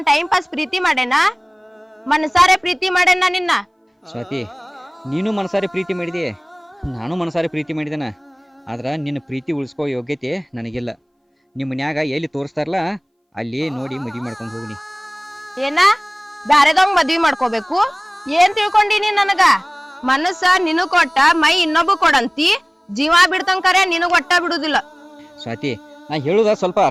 ಟೈಮ್ ಪಾಸ್ ಪ್ರೀತಿ ಮಾಡೇನ? ಮನಸಾರೆ ಪ್ರೀತಿ ಮಾಡೇನ ನಿನ್ನ? ಸ್ವಾತಿ, ನೀನು ಮನಸಾರಿ ಪ್ರೀತಿ ಮಾಡಿದಿ, ನಾನು ಮನಸಾರಿ ಪ್ರೀತಿ ಮಾಡಿದೇನ. ಆದ್ರ ನಿನ್ನ ಪ್ರೀತಿ ಉಳಿಸ್ಕೋ ಯೋಗ್ಯತೆ ನನಗಿಲ್ಲ. ನಿಮ್ಮ ಮನ್ಯಾಗ ಎಲ್ಲಿ ತೋರಿಸ್ತಾರಲ್ಲ ಅಲ್ಲಿ ನೋಡಿ ಮದ್ವಿ ಮಾಡ್ಕೊಂಡು ಹೋಗ್ನಿ. ಏನ ಬ್ಯಾರೆದವಂಗ್ ಮದ್ವಿ ಮಾಡ್ಕೋಬೇಕು? ಏನ್ ತಿಳ್ಕೊಂಡಿನಿ ನನಗ? ಮನಸ್ಸ ನಿನಗ್ ಕೊಟ್ಟ ಮೈ ಇನ್ನೊಬ್ಬ ಕೊಡಂತಿ. ಜೀವ ಬಿಡ್ತಂಕರೆ ನಿನಗ್ ಒಟ್ಟ ಬಿಡುದಿಲ್ಲ. ಸ್ವಾತಿ, ನಾ ಹೇಳುದ ಸ್ವಲ್ಪ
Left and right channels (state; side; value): identical; both; correlation 1.00